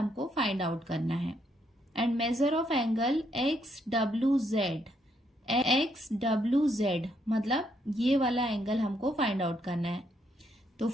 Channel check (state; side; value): normal; both; correlation 0.74